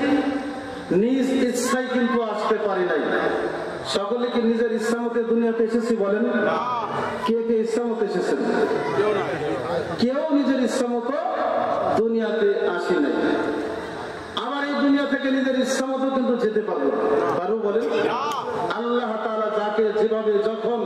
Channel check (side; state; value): both; identical; correlation 1.00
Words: নিজ ইচ্ছায় কিন্তু আসতে পারি নাই। সকলে কি নিজের ইচ্ছা মতে দুনিয়াতে এসেছি বলেন? কে কে ইচ্ছা মতো এসেছেন? কেউ নিজের ইচ্ছা মতো দুনিয়াতে আসি নাই। আবার এই দুনিয়া থেকে নিজের ইচ্ছা মতো কিন্তু যেতে পারবো বলেন? আল্লাহ তাআলা যাকে যেভাবে যখন